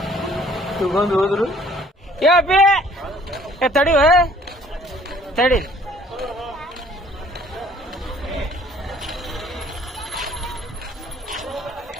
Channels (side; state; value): both; normal; correlation 0.58